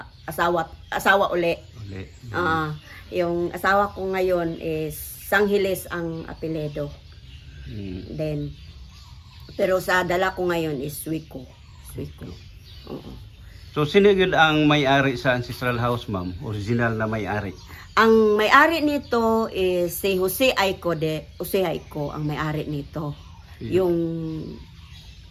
uli. Uli. Yung asawa ko ngayon is Sanghiles ang apelyido. Then, pero sa dala ko ngayon is Suico. Oo. So, sino yun ang may-ari sa ancestral house, ma'am? Original na may-ari? Ang may-ari nito is si Jose Aiko Jose Aiko ang may-ari nito. Yung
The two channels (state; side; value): identical; both; correlation 1.00